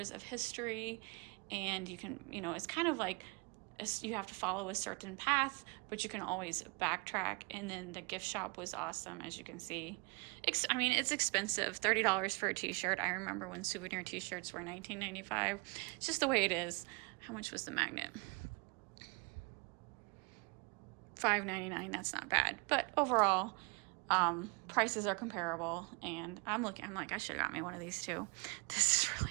of history, and you can, it's kind of like you have to follow a certain path, but you can always backtrack. And then the gift shop was awesome, as you can see. I mean, it's expensive, $30 for a t-shirt. I remember when souvenir t-shirts were $19.95. It's just the way it is. How much was the magnet? $5.99. That's not bad, but overall prices are comparable. And I'm like, I should have got me one of these too. This is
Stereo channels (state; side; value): quieter; left; 30.6 dB